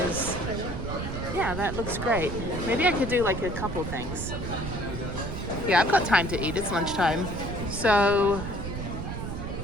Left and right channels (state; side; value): noise; right; rumble, 5 dB below the sound